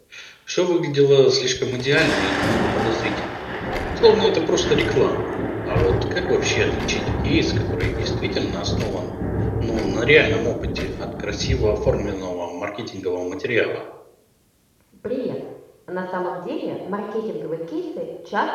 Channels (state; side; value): identical; both; correlation 1.00